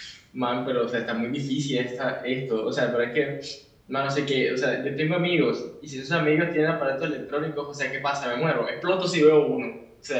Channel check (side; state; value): both; identical; correlation 1.00